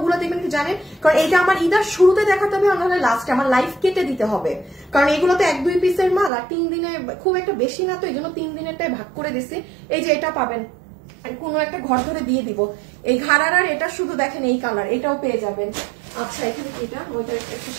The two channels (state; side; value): drops out; left; at 6.3 s